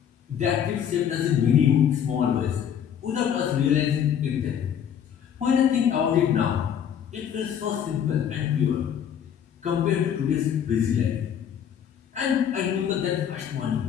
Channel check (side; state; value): right; quieter; 8.8 dB